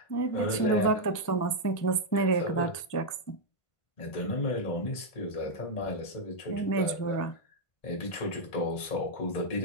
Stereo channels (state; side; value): late; right; 1.5 ms